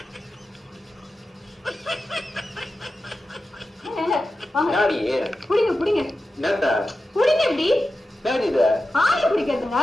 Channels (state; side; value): normal; both; correlation 0.92